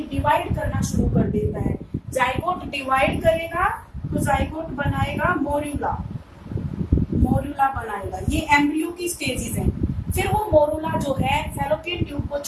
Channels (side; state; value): both; identical; correlation 1.00